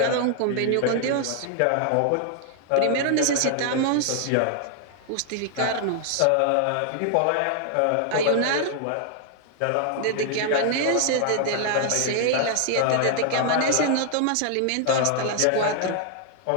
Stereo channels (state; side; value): different; both; correlation 0.00